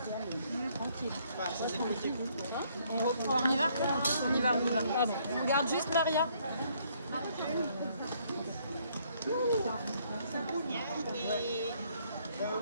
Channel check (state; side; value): inverted; both; correlation -0.67